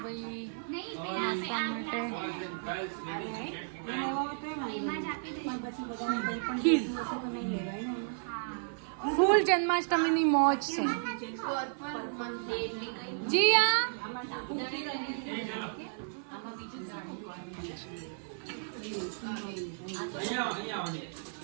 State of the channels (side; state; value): left; silent; 55 dB below the other